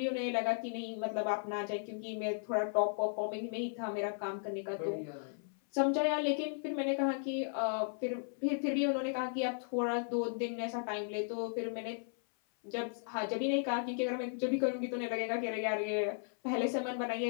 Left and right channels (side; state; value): right; silent; 54 dB below the other